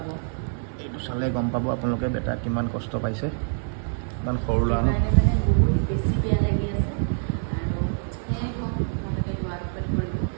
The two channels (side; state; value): left; silent; digital silence